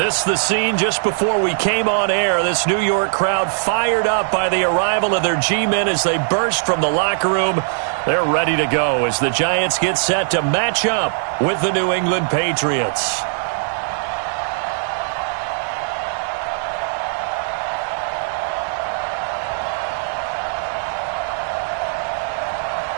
is the scene just before we came on air. This New York crowd fired up by the arrival of their G-men as they burst from the locker room. They're ready to go as the Giants get set to match up with the New England Patriots.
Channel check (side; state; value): left; silent; digital silence